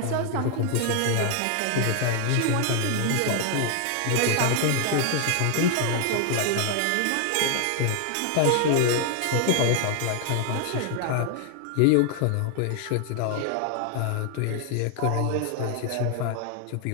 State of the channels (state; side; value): different; both; correlation 0.00